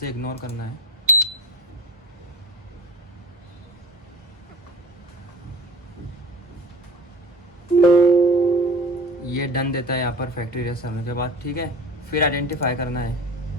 इग्नोर करना है। ये डन देता है यहाँ पर फैक्ट्री इरेज करने के बाद, ठीक है। फिर आइडेंटिफाई करना है।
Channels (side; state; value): both; normal; correlation 0.37